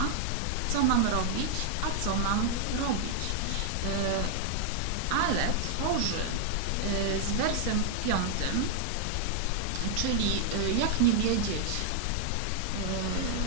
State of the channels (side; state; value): both; different; correlation -0.01